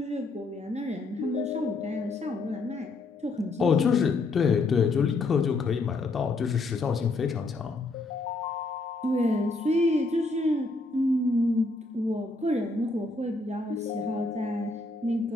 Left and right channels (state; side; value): quieter; right; 3.3 dB